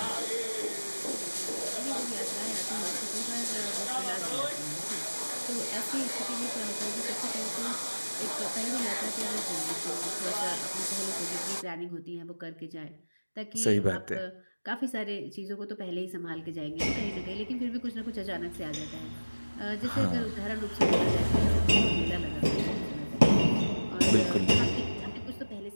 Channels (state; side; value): inverted; both; correlation -1.00